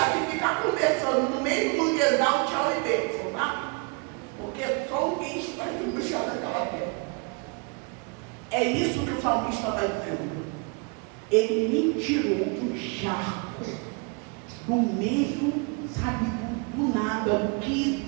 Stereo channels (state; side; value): quieter; left; 31.9 dB